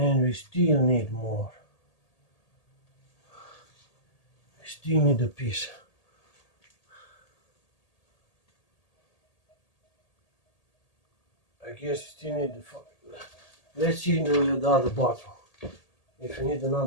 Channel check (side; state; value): right; late; 1.8 ms